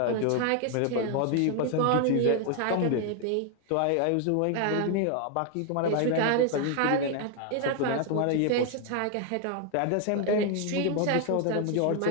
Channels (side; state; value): both; different; correlation 0.00